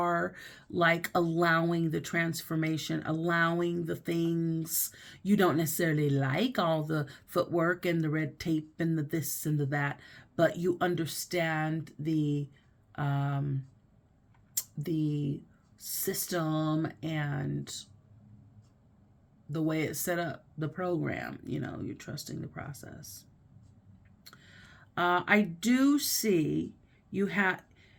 like allowing the transformation, allowing the things you don't necessarily like, all the footwork and the red tape and the this and the that, but you understand the system and the way it's set up, the program. You're trusting the process. I do see you have,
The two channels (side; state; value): both; identical; correlation 1.00